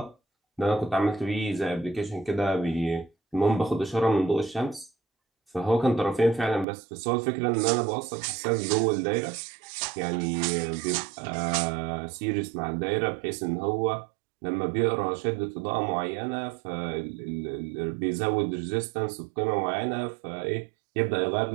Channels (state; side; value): drops out; left; at 6.7 s